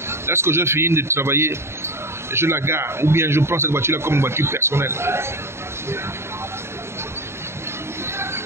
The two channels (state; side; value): late; left; 0.12 ms